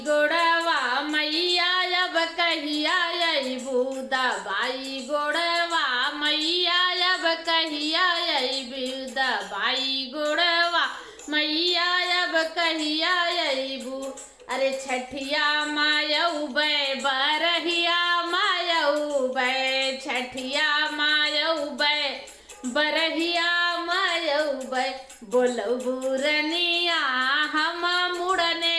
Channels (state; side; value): identical; both; correlation 1.00